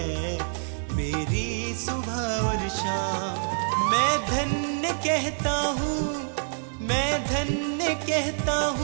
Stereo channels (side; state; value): left; silent; digital silence